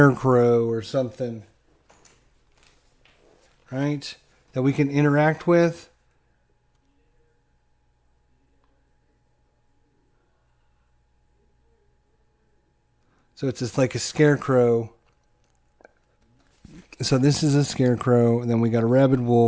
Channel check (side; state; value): both; identical; correlation 1.00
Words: or something, right? That we can interact with. So it's just like a scarecrow. So this is a scarecrow, and then we got a rabid